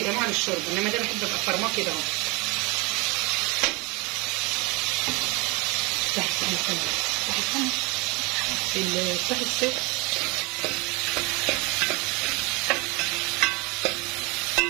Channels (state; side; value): quieter; left; 27.0 dB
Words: جماعه للشرب، انما ده بحب ابقى فرماه كده اهو. تحت السقف